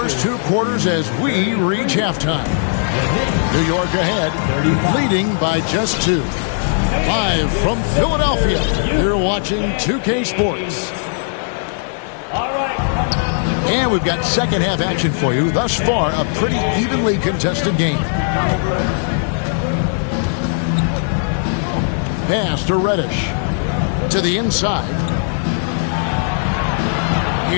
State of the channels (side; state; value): right; silent; digital silence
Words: 2 quarters as we reach halftime. New York ahead, leading by just 2. Live from Philadelphia, you're watching 2K Sports. And we've got second half action for you. Thus far, a pretty evenly contested game. Pass to Reddish. To the inside.